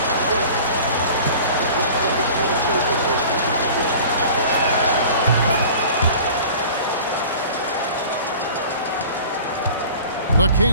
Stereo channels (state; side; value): inverted; both; correlation -0.43